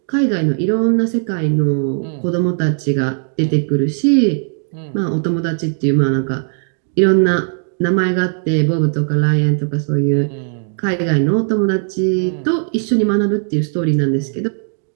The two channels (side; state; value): left; silent; 63 dB below the other